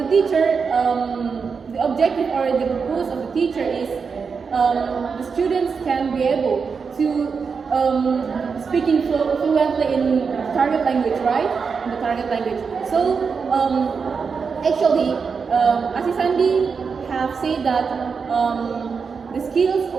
teacher, the objective or the purpose of the teacher is the students can be able to speaking fluently in target language, right? In the target language. So actually, Asi Sandi have said that the skills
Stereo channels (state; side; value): quieter; left; 5.5 dB